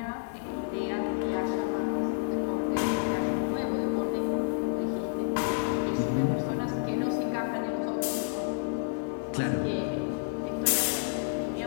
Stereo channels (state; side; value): silent; right; 58 dB below the other